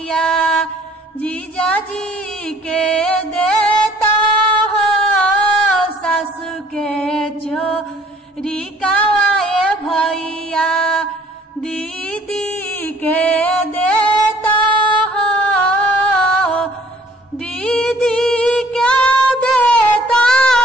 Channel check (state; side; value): normal; both; correlation 0.57